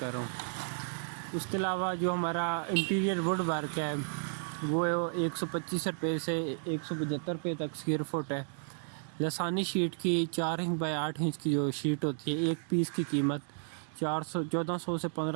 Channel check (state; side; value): silent; left; digital silence